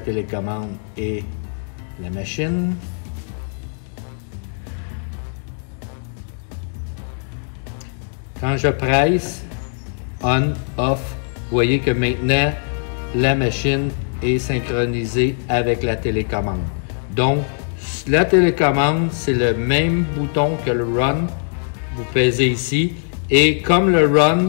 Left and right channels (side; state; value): right; silent; 65 dB below the other